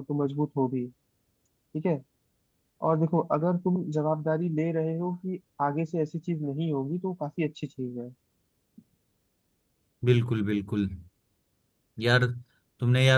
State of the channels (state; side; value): identical; both; correlation 1.00